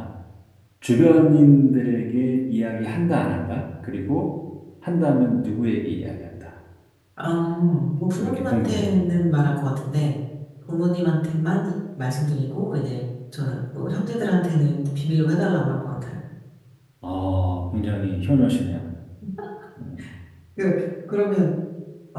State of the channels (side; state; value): both; identical; correlation 1.00